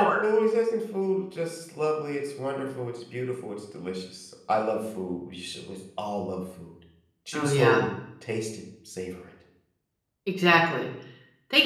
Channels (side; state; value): both; identical; correlation 1.00